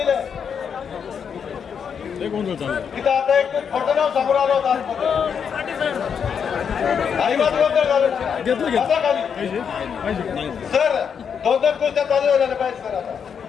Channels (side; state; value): right; quieter; 7.1 dB